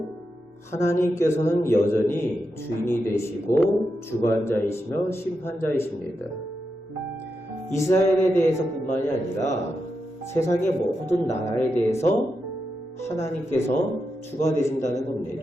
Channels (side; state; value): both; normal; correlation 0.87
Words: 하나님께서는 여전히 주인이 되시고 주관자이시며 심판자이십니다. 이스라엘에 대해서뿐만이 아니라 세상의 모든 나라에 대해서 하나님께서 주가 되신다는